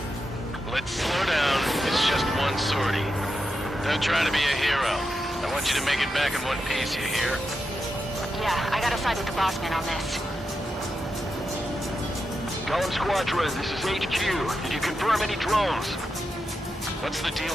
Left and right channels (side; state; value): both; normal; correlation 0.87